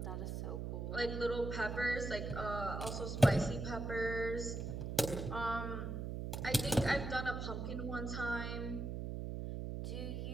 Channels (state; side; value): noise; right; hum, 4 dB below the sound